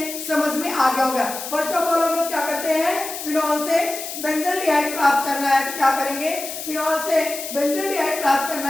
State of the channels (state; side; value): noise; left; hiss, 8 dB below the sound